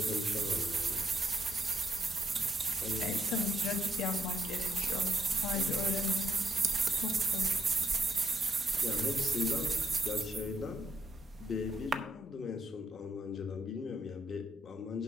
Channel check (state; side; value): normal; both; correlation 0.76